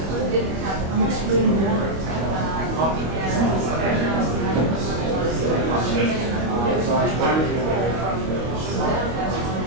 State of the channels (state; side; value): late; left; 25 ms